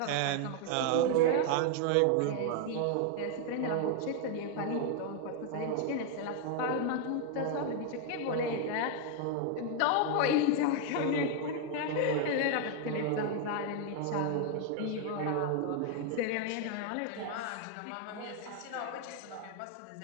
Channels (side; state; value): both; different; correlation 0.00